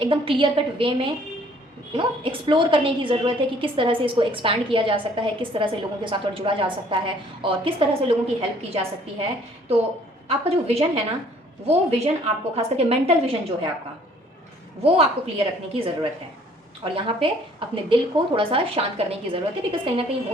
क्लियर कट वे में एक्सप्लोर करने की ज़रूरत है कि किस तरह से इसको एक्सपैंड किया जा सकता है, किस तरह से लोगों के साथ और जुड़ा जा सकता है, और किस तरह से लोगों की हेल्प की जा सकती है। तो आपका जो विज़न है ना, वो विज़न आपको, खास करके मेंटल विज़न जो है आपका, वो आपको क्लियर रखने की ज़रूरत है। और यहाँ पे अपने दिल को थोड़ा सा शांत करने की ज़रूरत है, बिकॉज कहीं ना कहीं हो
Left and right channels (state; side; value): normal; both; correlation 0.59